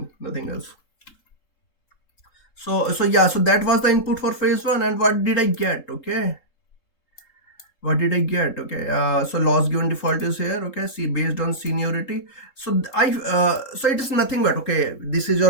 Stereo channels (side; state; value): right; late; 3.7 ms